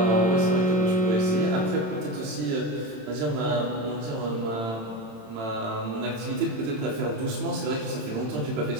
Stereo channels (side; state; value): left; late; 27 ms